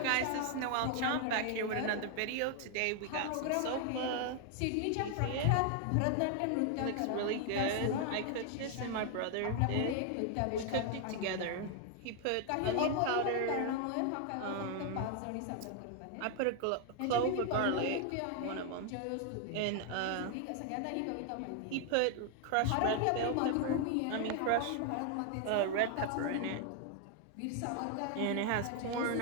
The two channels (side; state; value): both; different; correlation 0.00